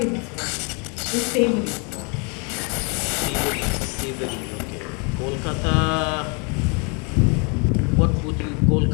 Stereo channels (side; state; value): right; quieter; 34.1 dB